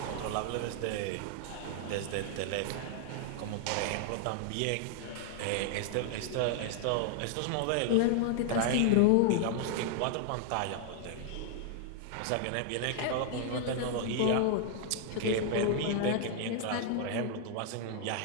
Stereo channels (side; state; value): both; different; correlation 0.00